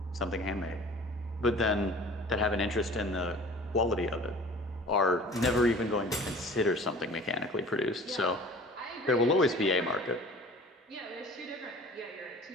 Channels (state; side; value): normal; both; correlation 0.44